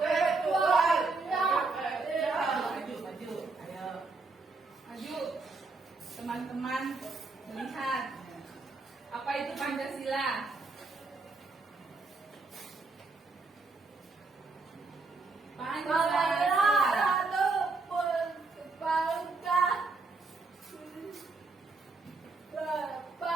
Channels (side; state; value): left; quieter; 3.8 dB